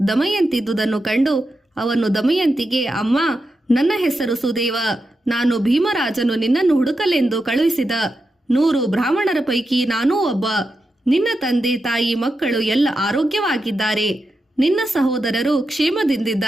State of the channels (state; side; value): normal; both; correlation 0.88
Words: ದಮಯಂತಿದ್ದುದನ್ನು ಕಂಡು ಅವನು ದಮಯಂತಿಗೆ, ಅಮ್ಮ, ನನ್ನ ಹೆಸರು ಸುದೇವ. ನಾನು ಭೀಮರಾಜನು ನಿನ್ನನ್ನು ಹುಡುಕಲೆಂದು ಕಳುಹಿಸಿದ 100 ಬ್ರಾಹ್ಮಣರ ಪೈಕಿ ನಾನೂ ಒಬ್ಬ. ನಿನ್ನ ತಂದೆ ತಾಯಿ ಮಕ್ಕಳು ಎಲ್ಲ ಆರೋಗ್ಯವಾಗಿದ್ದಾರೆ. ನಿನ್ನ ಸಹೋದರರು